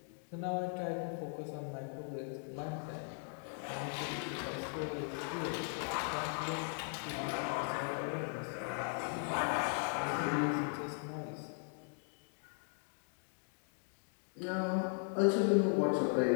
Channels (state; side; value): silent; right; 52 dB below the other